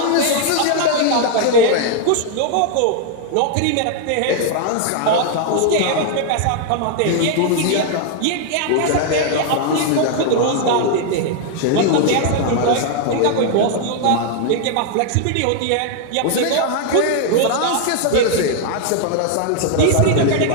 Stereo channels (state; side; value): different; both; correlation 0.00